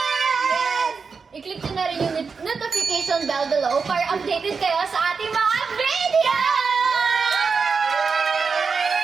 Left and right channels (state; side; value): quieter; left; 5.2 dB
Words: Yes! I-click nyo na rin yung notification bell below para updated kayo sa ating mga video!